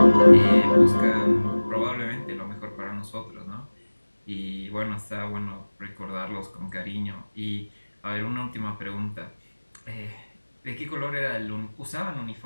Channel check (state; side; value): inverted; both; correlation -1.00